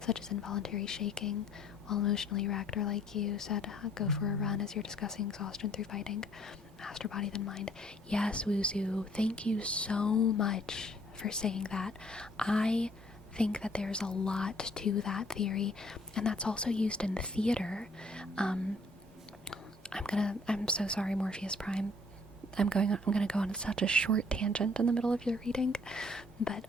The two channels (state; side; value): normal; both; correlation 0.61